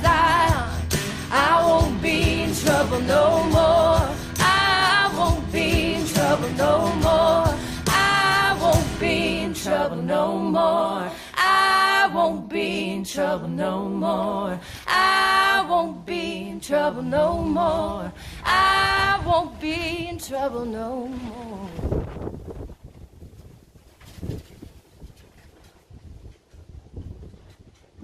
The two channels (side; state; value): both; identical; correlation 1.00